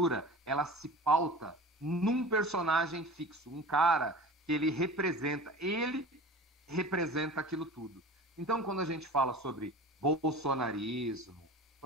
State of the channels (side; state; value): both; normal; correlation 0.37